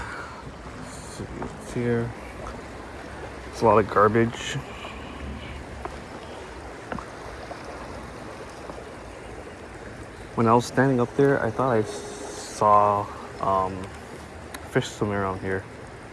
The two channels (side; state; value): both; identical; correlation 1.00